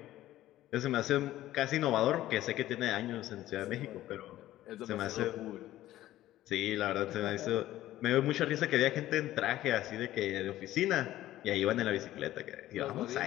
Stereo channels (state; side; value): quieter; right; 14.5 dB